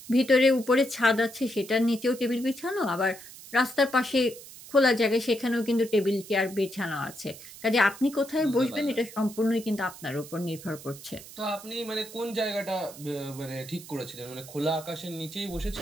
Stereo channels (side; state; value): right; noise; hiss, 16 dB below the sound